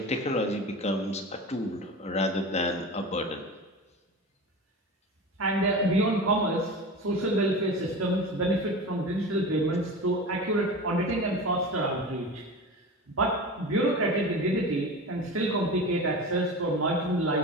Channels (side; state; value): both; normal; correlation 0.30